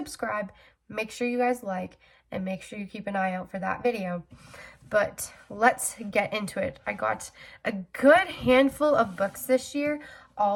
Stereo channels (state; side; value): identical; both; correlation 1.00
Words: make sure you guys like, and make sure you keep an eye out for that video. But let's get into it. I got a good handful of books this year,